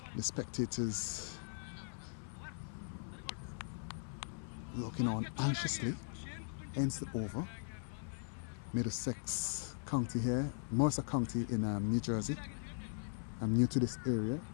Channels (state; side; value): silent; right; 51 dB below the other